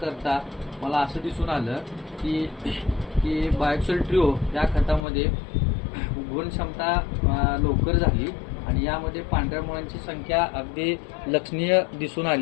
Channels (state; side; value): drops out; right; at 5.1 s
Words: करता मला असं दिसून आलं की बायोक्सिल ट्रिओ या खतामध्ये गुण क्षमता लवकर झाली आणि यामध्ये पांढऱ्या मुळांची संख्या अगदी लक्षणीय दिसून